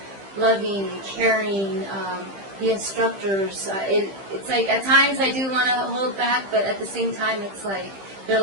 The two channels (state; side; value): late; left; 15 ms